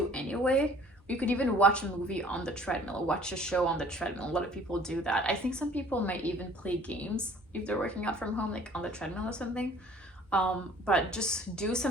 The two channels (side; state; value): both; normal; correlation 0.53